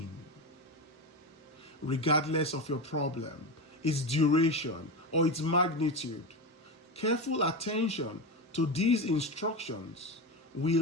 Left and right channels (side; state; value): both; normal; correlation 0.19